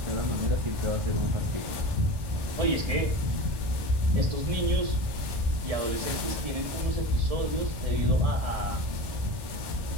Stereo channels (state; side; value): late; left; 1.1 ms